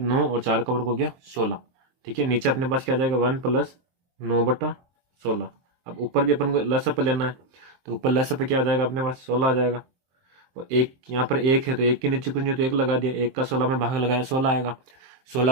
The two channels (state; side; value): late; left; 23 ms